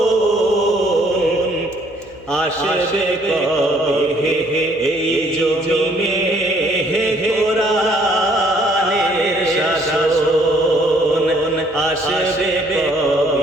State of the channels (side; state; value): left; noise; hum, 24 dB below the sound